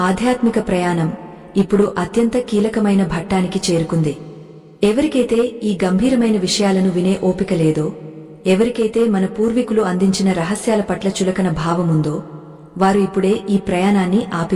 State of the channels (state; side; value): identical; both; correlation 1.00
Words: ప్రయాణం ఇప్పుడు అత్యంత కీలకమైన ఘట్టానికి చేరుకుంది. ఎవరికైతే ఈ గంభీరమైన విషయాలను వినే ఓపిక లేదో, ఎవరికైతే మన పూర్వీకులు అందించిన రహస్యాల పట్ల చులకన భావముందో, వారు ఇప్పుడే ఈ ప్రయాణాన్ని